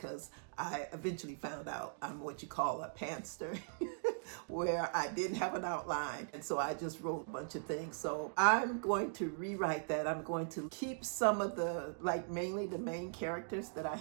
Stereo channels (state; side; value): silent; left; digital silence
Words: I eventually found out I'm what you call a pantster, where I didn't have an outline. And so I just wrote a bunch of things. So I'm going to rewrite that. I'm going to keep some of the, like mainly the main characters that I